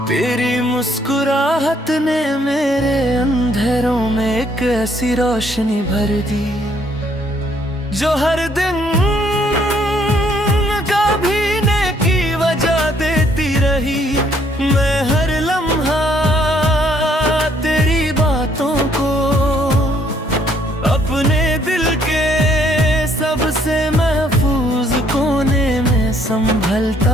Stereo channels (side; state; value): both; normal; correlation 0.67